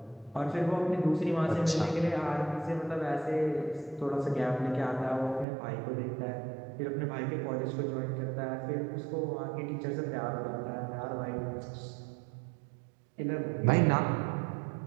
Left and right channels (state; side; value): drops out; left; at 5.5 s